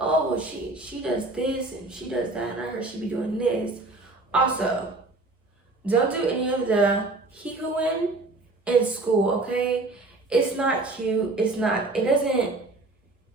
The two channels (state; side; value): quieter; left; 3.1 dB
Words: well, she does this and she does that, and I heard she be doing this. Also, don't do any of the hee-hooing in school, okay? It's not cute. It